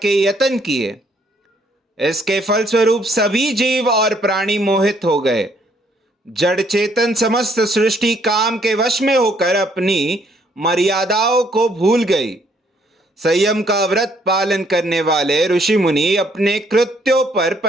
यत्न किए। इसके फलस्वरूप सभी जीव और प्राणी मोहित हो गए। जड़ चेतन समस्त सृष्टि काम के वश में होकर अपनी मर्यादाओं को भूल गई। संयम का व्रत पालन करने वाले ऋषि मुनि अपने कृत्यों पर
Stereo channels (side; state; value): both; normal; correlation 0.67